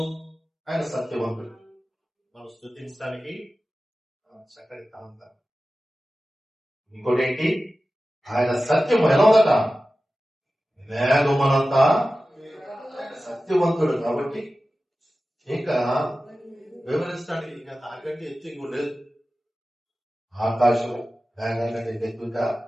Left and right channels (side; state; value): both; normal; correlation 0.95